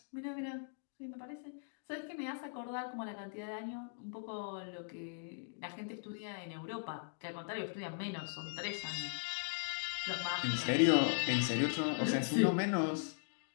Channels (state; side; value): silent; right; digital silence